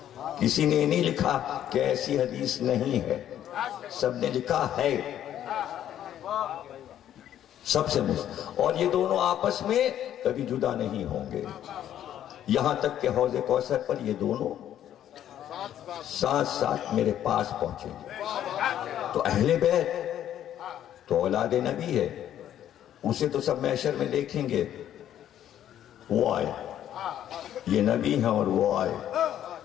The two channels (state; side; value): quieter; right; 11.0 dB